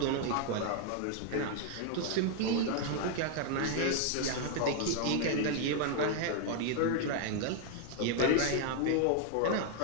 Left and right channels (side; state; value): both; different; correlation 0.00